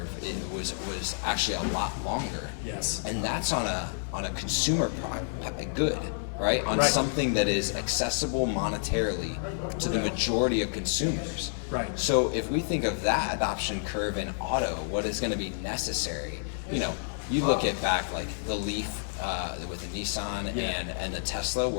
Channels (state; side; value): silent; right; 58 dB below the other